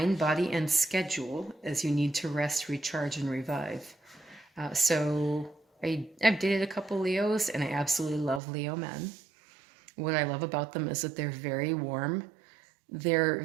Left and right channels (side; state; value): left; drops out; at 8.4 s